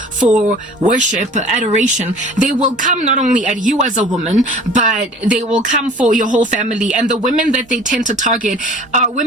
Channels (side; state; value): both; normal; correlation 0.46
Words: for worship, adoration. They will come not only at you as a woman, but they will come for your whole family. And the women that they tend to target are